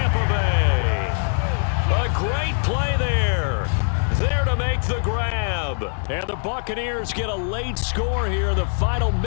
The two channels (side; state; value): right; silent; digital silence